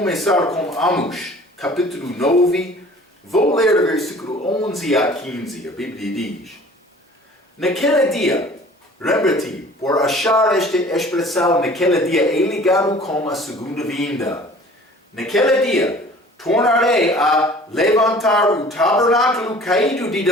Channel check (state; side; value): normal; both; correlation 0.48